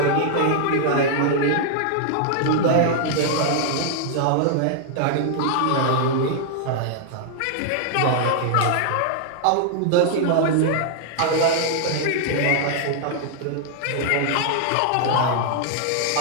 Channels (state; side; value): different; both; correlation 0.00